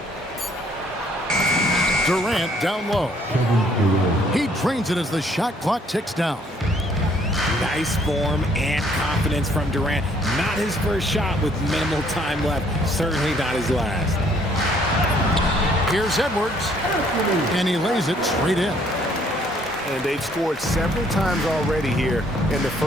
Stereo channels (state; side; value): normal; both; correlation 0.63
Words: Durant down low. He drains it as the shot clock ticks down. Nice form and confidence from Durant. Not his first shot with minimal time left. Certainly not his last. Here's Edwards. And he lays it straight in. And they've scored several times already here in the